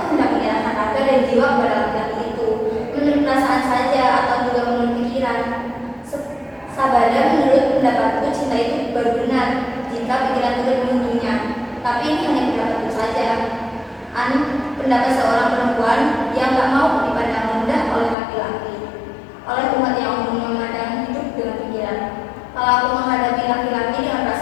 hendak menyerahkan raga dan jiwa kepada laki-laki itu? Menurut perasaan saja atau juga menurut pikiran? Sabada menurut pendapatku pendapat seorang perempuan yang tak mau dipandang rendah oleh laki-laki, oleh umat yang umum memandang hidup dengan pikiran. Kalau aku menghadapi laki-laki dengan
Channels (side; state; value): right; drops out; at 18.2 s